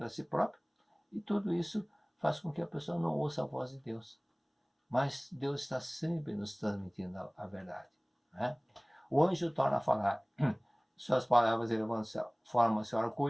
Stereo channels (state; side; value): identical; both; correlation 1.00